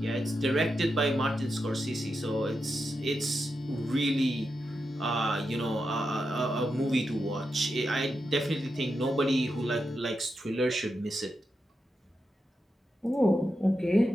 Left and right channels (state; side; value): normal; both; correlation 0.87